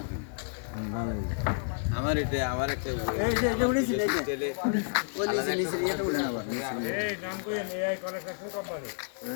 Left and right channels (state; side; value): silent; right; digital silence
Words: আমার এটা আমার একটা এই যে এটা উড়েছি এই যে তেলে ওই নিচে নিচে এটা উড়ে না আবার নিচে নিচে। এই নাম কইেন এই কনেকশন কোম্পানি